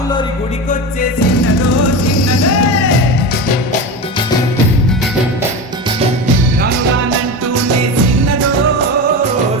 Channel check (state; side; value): normal; both; correlation 0.24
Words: గుడికొచ్చే చిన్నదో చిన్నదే. రాను రానంటూనే చిన్నదో